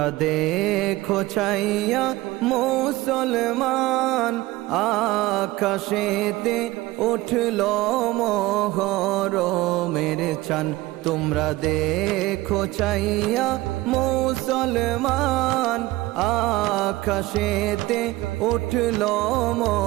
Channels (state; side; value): quieter; left; 18.8 dB